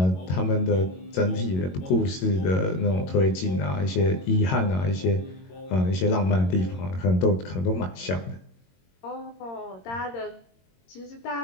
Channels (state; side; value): late; right; 22 ms